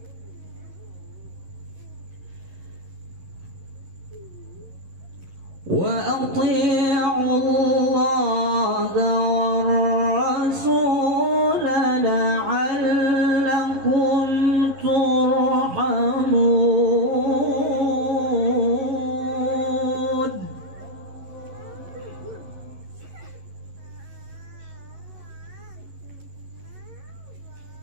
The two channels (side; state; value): left; late; 11 ms